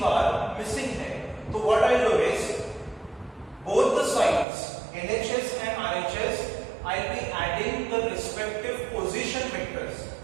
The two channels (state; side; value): drops out; left; at 4.5 s